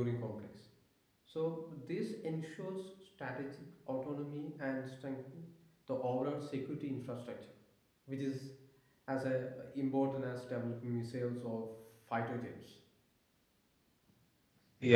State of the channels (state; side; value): identical; both; correlation 1.00